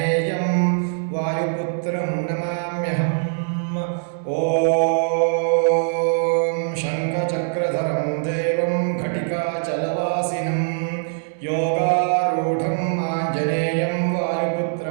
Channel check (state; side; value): silent; left; 64 dB below the other